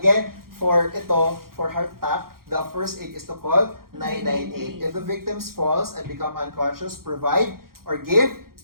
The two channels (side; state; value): left; late; 0.93 ms